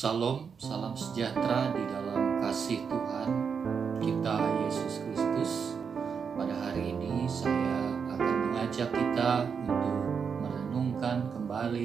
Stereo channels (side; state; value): left; quieter; 6.3 dB